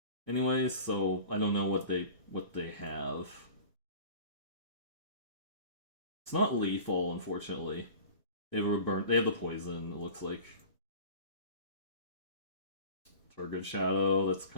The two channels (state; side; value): inverted; both; correlation -0.40